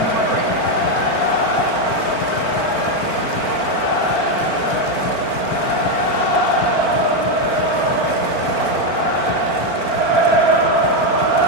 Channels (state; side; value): late; right; 4.4 ms